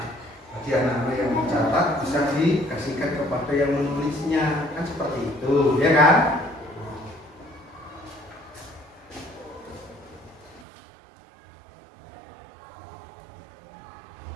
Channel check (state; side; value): drops out; left; at 10.7 s